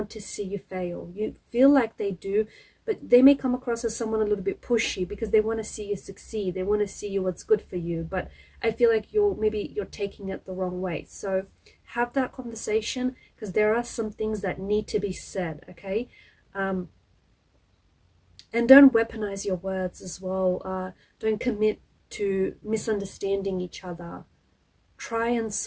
to see you fail. You feel like they do, but they may come across as someone a little bit pushy, because they want to see you succeed. They want to see you what's good for you, but I feel like you're taking it the wrong way. So have that conversation, because there are some things that need to be said, okay? And don't weaponize your words as well. Don't commit to misunderstanding each other. Try and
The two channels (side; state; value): both; identical; correlation 1.00